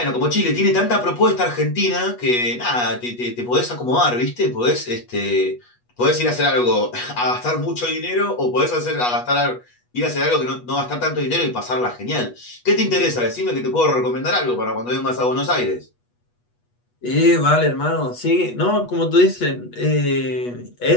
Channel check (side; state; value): right; late; 8.3 ms